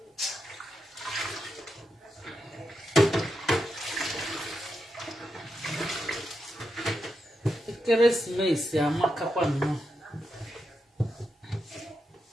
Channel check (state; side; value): normal; both; correlation 0.86